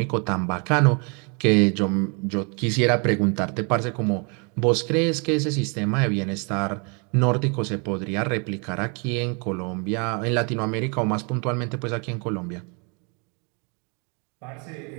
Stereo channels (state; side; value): quieter; left; 34.3 dB